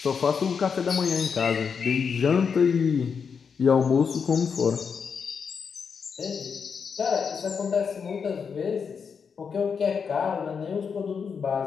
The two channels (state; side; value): quieter; right; 6.2 dB